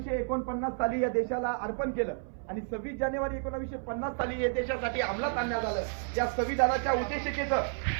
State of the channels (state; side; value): silent; left; 57 dB below the other